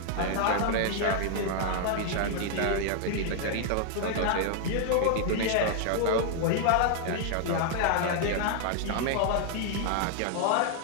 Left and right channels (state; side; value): different; both; correlation 0.00